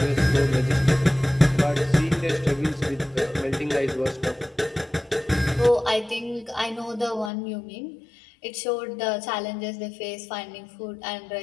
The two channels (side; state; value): right; drops out; at 7.3 s